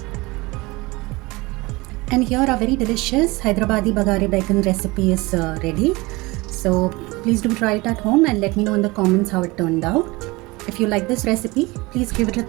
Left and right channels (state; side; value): quieter; left; 23.0 dB